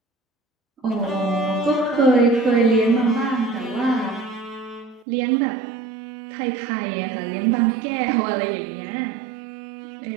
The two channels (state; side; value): drops out; left; at 5.1 s